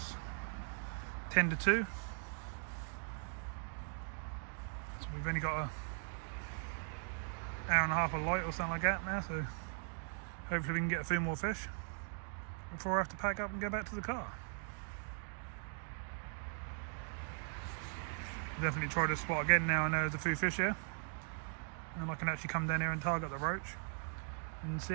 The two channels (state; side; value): silent; left; 51 dB below the other